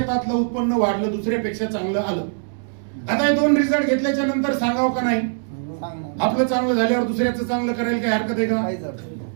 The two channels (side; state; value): left; silent; digital silence